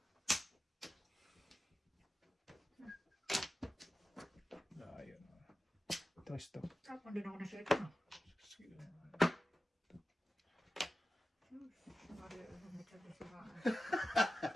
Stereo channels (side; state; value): both; normal; correlation 0.93